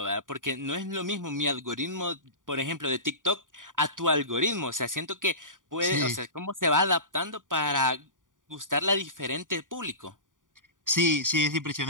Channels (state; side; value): late; left; 0.88 ms